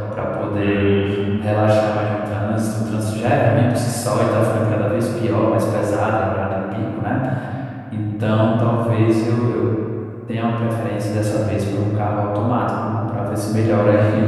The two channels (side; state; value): both; identical; correlation 1.00